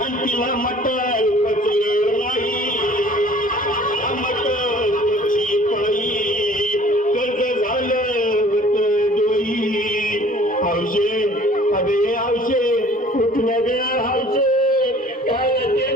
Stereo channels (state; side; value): normal; both; correlation 0.51